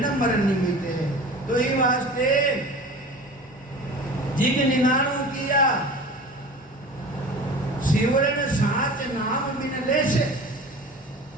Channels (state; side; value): normal; both; correlation 0.38